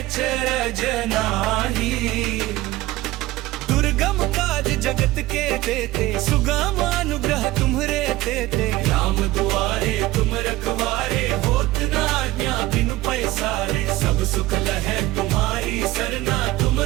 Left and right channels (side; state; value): left; quieter; 17.6 dB